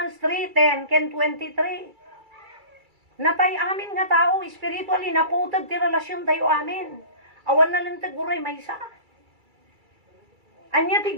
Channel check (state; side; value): late; left; 2.3 ms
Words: 3:10, ken 23. Natay amin nga tao, spiritually, naputod ti relasyon tayo amin. Awan na lang taguray may isa. Anya